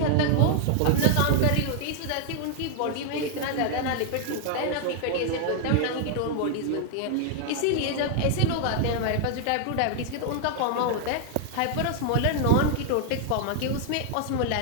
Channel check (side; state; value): both; different; correlation 0.00